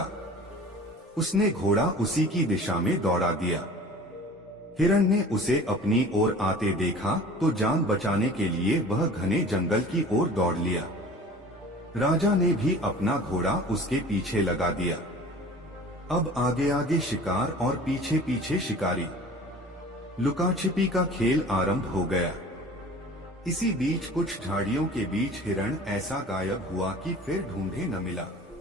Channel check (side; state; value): both; normal; correlation 0.43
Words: उसने घोड़ा उसी की दिशा में दौड़ा दिया। हिरण ने उसे अपनी ओर आते देखा तो जान बचाने के लिए वह घने जंगल की ओर दौड़ लिया। राजा ने भी अपना घोड़ा उसके पीछे लगा दिया। अब आगे आगे शिकार और पीछे पीछे शिकारी। लुकाछिपी का खेल आरंभ हो गया। इसी बीच कुछ झाड़ियों के बीच हिरण ऐसा गायब हुआ कि फिर ढूंढे न मिला।